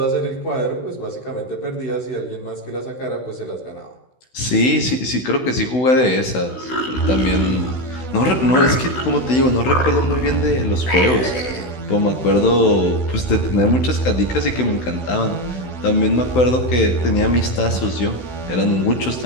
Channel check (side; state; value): right; late; 16 ms